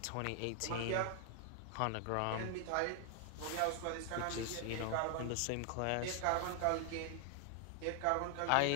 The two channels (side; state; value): both; different; correlation 0.00